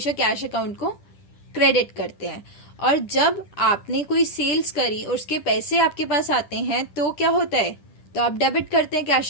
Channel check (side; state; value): right; late; 10 ms